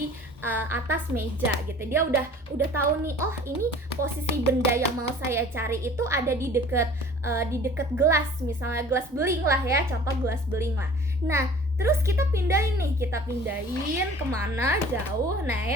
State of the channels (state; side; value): normal; both; correlation 0.47